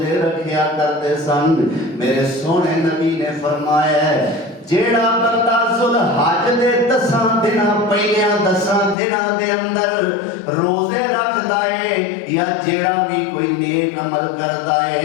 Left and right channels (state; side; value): drops out; right; at 9.0 s